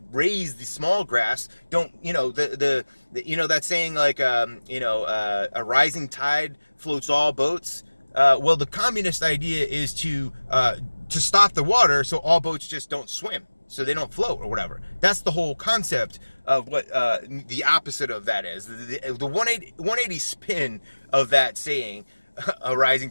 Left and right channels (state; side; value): inverted; both; correlation -1.00